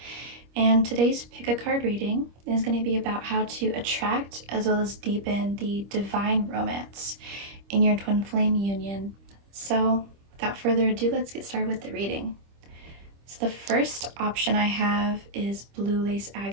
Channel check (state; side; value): late; left; 25 ms